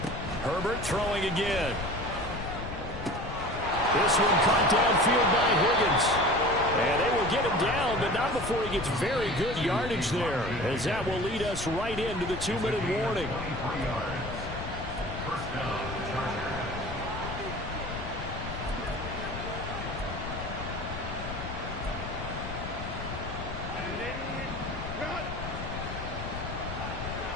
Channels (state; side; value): noise; left; rumble, 8 dB below the sound